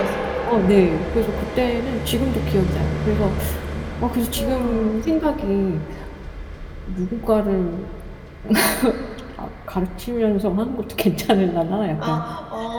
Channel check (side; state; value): both; identical; correlation 1.00